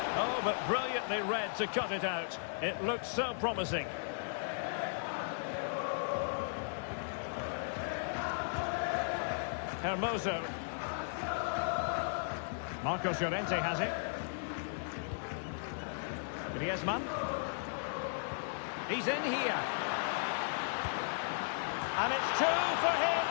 Oh, but brilliantly read to cut it out. It looked so promising. Hermoso. Marcos Llorente has it. Griezmann. He's in here. And it's two for him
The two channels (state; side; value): silent; right; digital silence